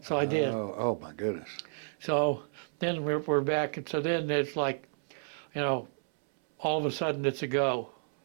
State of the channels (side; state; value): left; silent; 57 dB below the other